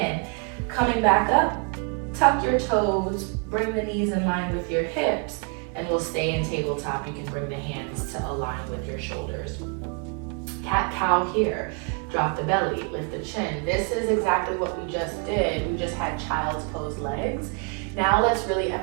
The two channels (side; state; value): left; quieter; 36.1 dB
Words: Coming back up, tuck your toes, bring the knees in line with your hips, and we'll stay in tabletop. You can bring the hands to align with your shoulders. Cat-cow here. Drop the belly, lift the chin. This is exactly what we just did. We just had child's pose legs. Now let's really